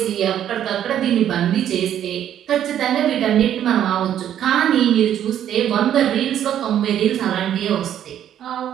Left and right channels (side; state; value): left; quieter; 10.5 dB